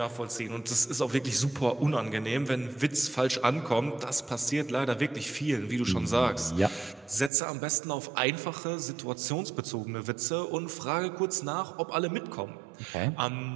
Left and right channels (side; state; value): left; drops out; at 7.3 s